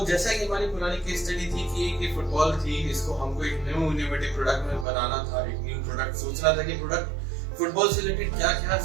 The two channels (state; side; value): drops out; left; at 4.9 s